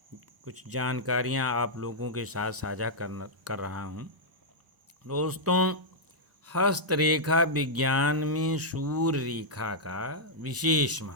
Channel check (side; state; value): left; late; 1.0 ms